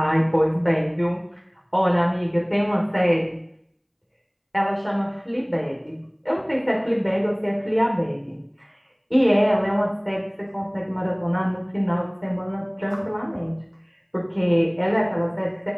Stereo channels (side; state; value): both; identical; correlation 1.00